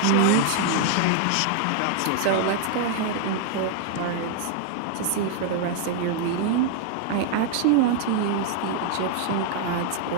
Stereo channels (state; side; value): different; both; correlation 0.00